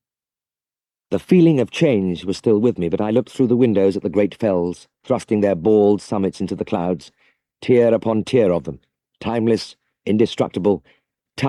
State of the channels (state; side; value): identical; both; correlation 1.00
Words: The feeling of change was still with me, but I looked through the windows at the great fells, thrusting their bald summits into the clouds, tier upon tier of them, timeless, indestructible,